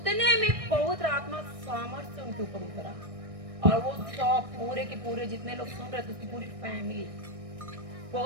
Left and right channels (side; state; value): left; late; 1.6 ms